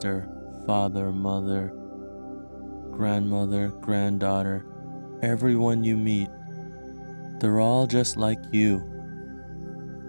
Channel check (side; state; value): both; inverted; correlation -1.00